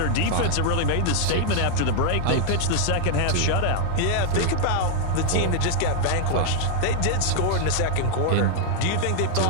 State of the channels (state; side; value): different; both; correlation 0.00